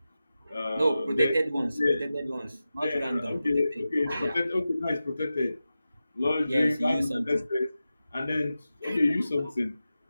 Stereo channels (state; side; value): inverted; both; correlation -0.93